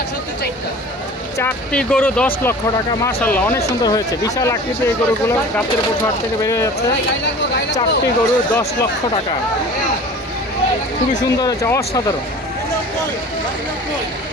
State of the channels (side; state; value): both; normal; correlation 0.41